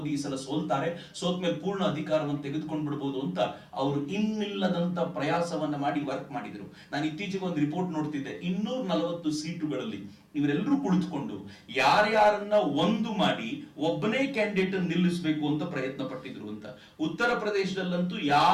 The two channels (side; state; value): both; identical; correlation 1.00